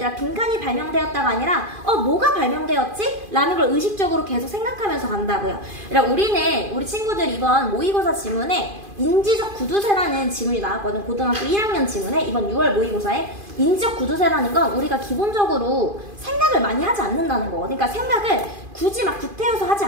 빈칸이 발명되었다가 아니라 뭐가 발명되었지? 라는 걸 의식적으로 계속 생각하면서 간다고요. 그러니까 우리 친구들 이번 모의고사 지문에 인지적 구두쇠라는 지문이 나왔거든. 고등학교 1학년 지문에 이번 6월 모의고사에 인지적 구두쇠라는 건 우리가 기본적으로 생각을 많이 하지 않는다는 거. 그러니까 생각을 굳이 막 구태여서 하지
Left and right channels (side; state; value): left; late; 2.5 ms